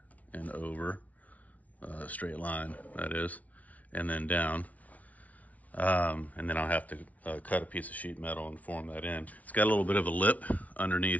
and over, straight line, that is, and then down. And then I'll have to cut a piece of sheet metal and form that in. It's got a little bit of a lip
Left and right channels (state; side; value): late; right; 0.071 ms